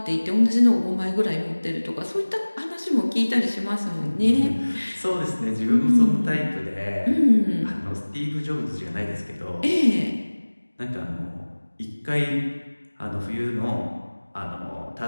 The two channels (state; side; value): inverted; both; correlation -1.00